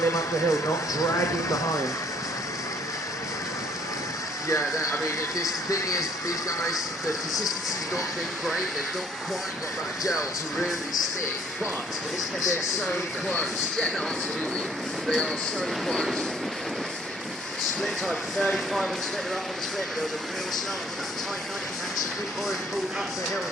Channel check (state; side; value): normal; both; correlation 0.61